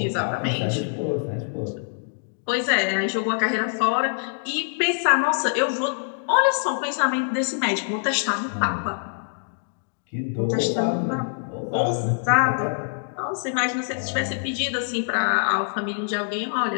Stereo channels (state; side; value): silent; right; digital silence